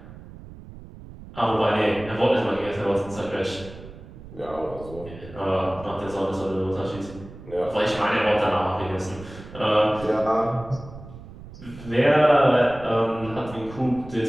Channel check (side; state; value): right; noise; rumble, 16 dB below the sound